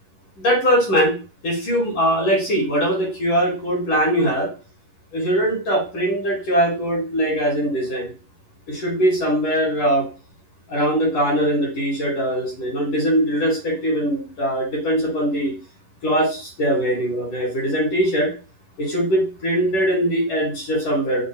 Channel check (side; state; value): right; late; 11 ms